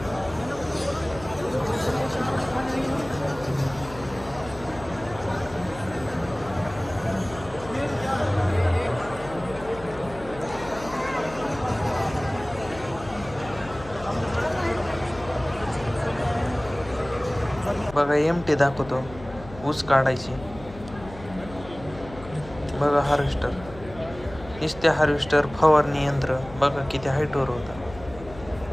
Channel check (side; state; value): left; noise; hum, 16 dB below the sound